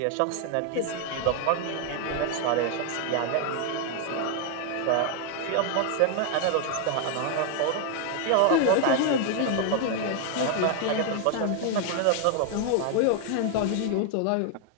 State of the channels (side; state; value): both; different; correlation 0.01